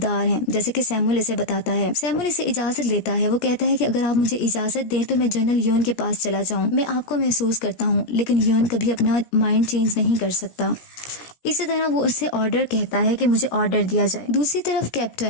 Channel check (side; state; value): right; late; 17 ms